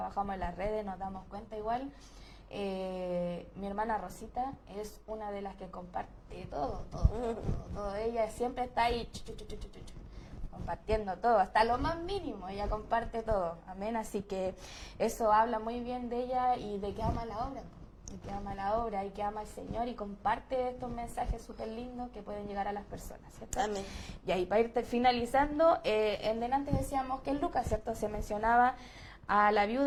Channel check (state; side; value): identical; both; correlation 1.00